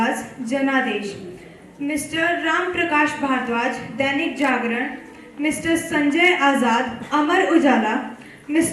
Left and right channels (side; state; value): both; identical; correlation 1.00